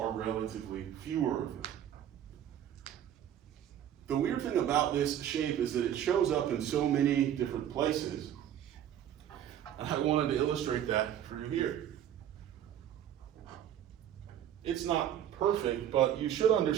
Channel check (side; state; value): left; quieter; 10.5 dB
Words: relatively fewer of them. The weird thing about this shape is that it shows up in so many different places. And I wanted to illustrate that for you here. It's not perfect, but you should